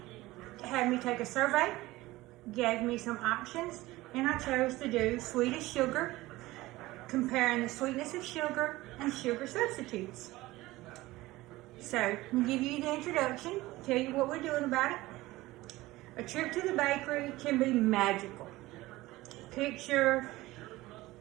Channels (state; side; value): quieter; left; 18.6 dB